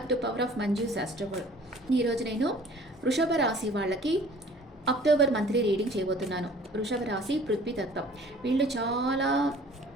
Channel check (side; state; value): both; normal; correlation 0.51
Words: to power of Manju's astroworld. ఈరోజు నేను వృషభ రాశి వాళ్ళకి అక్టోబర్ మంత్లీ రీడింగ్ చేయబోతున్నాను. వృషభ రాశి పృథ్వీ తత్వం. వీళ్ళు చాలా